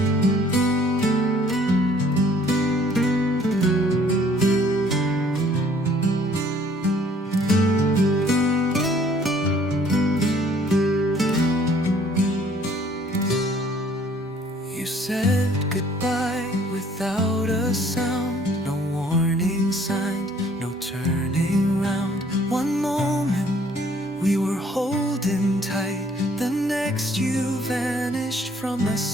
You said goodbye without a sound, no warning signs, no turning round. One moment we were holding tight, the next you vanished from my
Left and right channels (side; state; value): both; normal; correlation 0.59